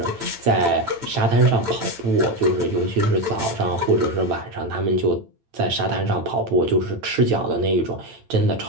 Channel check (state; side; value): late; left; 9.0 ms